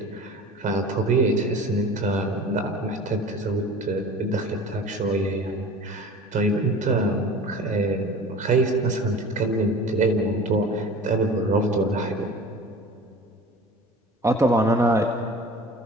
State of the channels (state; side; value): normal; both; correlation 0.40